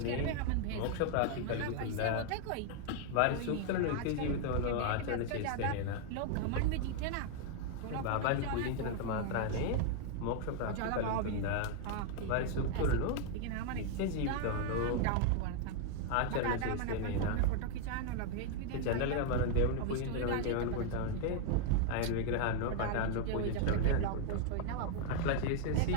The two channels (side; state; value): both; different; correlation 0.00